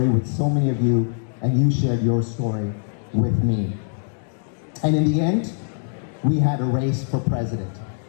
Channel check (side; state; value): right; silent; digital silence